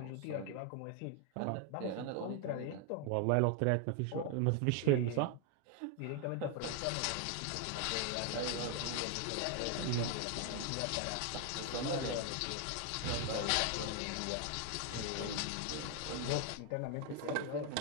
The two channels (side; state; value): both; different; correlation 0.01